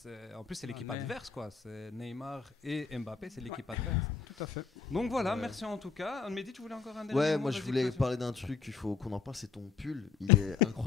en plus c'est l'équipe Ouais. adverse quoi. C'est Neymar et Mbappé, c'est l'équipe adverse. tout à fait. Donc voilà, Ouais. merci en tout cas. Mehdi, tu voulais encore un dernier Ouais, mot? moi je Vas-y, voulais vas-y. parler d'un truc, il faut qu'on en parle, c'est ton pull. Il est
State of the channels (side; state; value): right; quieter; 5.4 dB